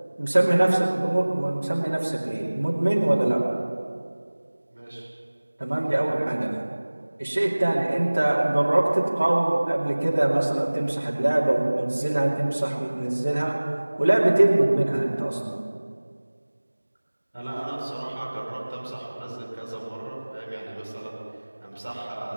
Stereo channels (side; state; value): both; inverted; correlation -1.00